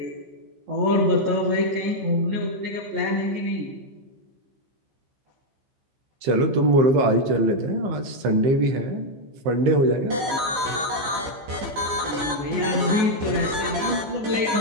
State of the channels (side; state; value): left; late; 15 ms